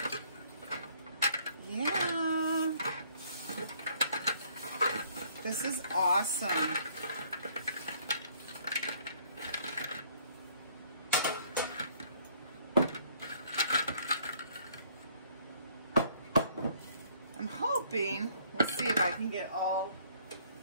Yeah. This is awesome. I can get all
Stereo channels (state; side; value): inverted; both; correlation -0.62